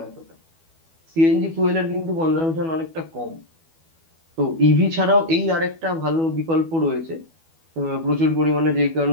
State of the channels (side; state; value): left; late; 12 ms